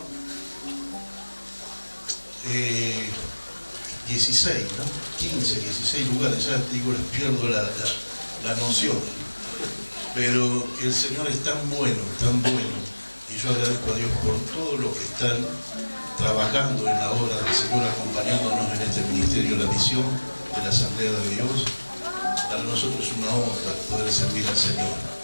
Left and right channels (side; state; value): both; inverted; correlation -1.00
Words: 16, ¿no? 15, 16 lugares, ya digo, les pierdo la noción. Pero el Señor es tan bueno, y yo agradezco a Dios por todo lo que están trabajando en la obra del Señor, acompañándonos en este ministerio, la misión de la Asamblea de Dios. Para nosotros es una honra poder servir al Señor.